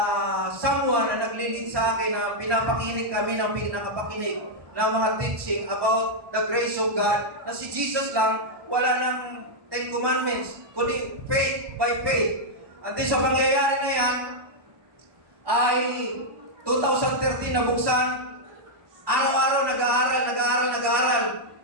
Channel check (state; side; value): late; left; 1.2 ms